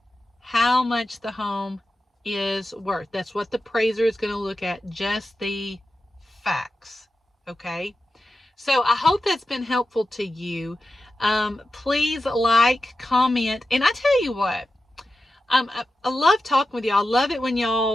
how much the home is worth. That's what the appraiser is going to look at, just the facts. Okay? So I hope that's been helpful to you. Please like, comment, and I tell you what, I love talking with y'all. I love it when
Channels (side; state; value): both; normal; correlation 0.92